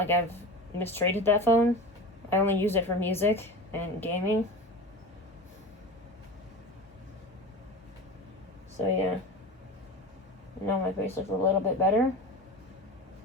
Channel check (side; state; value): both; normal; correlation 0.31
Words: I've mistreated that phone. I only use it for music and gaming. So yeah. Now my face looks a little bit better.